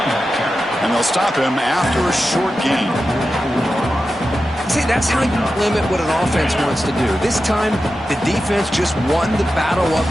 And they'll stop him after a short gain. See, that's how you limit what an offense wants to do. This time, the defense just won the battle up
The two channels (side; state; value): both; normal; correlation 0.91